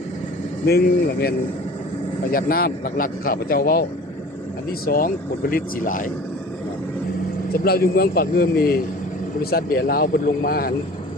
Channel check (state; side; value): normal; both; correlation 0.43